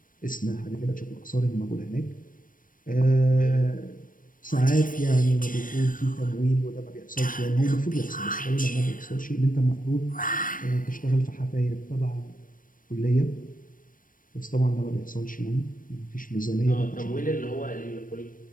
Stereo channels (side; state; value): right; late; 0.40 ms